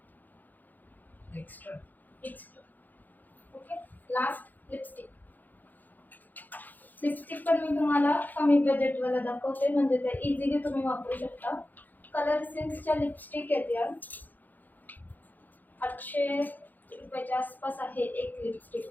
Extra. Okay, last lipstick. Lipstick पण मी तुम्हाला कमी बजेटवाला दाखवते, म्हणजे ते इझिली तुम्ही वापरू शकता. कलर सेन्सच्या लिपस्टिक आहेत या. 800 रुपयाच्या आसपास आहे एक लिपस्टिक.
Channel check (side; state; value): right; late; 0.085 ms